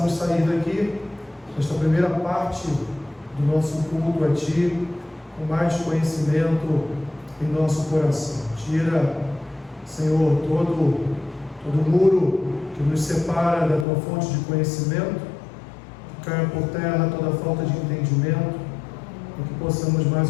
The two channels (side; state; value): right; drops out; at 13.9 s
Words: sair daqui, nesta primeira parte do nosso culto a Ti, com mais conhecimento em nosso coração. Tira, Senhor, todo muro que nos separa da Tua fonte de conhecimento, que caia por terra toda falta de entendimento, e que possamos